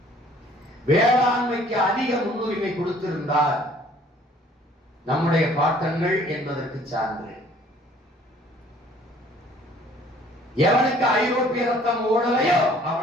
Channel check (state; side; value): normal; both; correlation 0.56